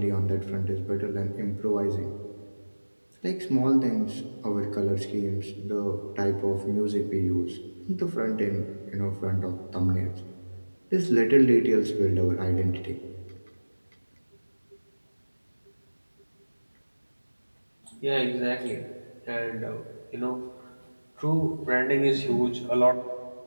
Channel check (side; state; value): both; inverted; correlation -1.00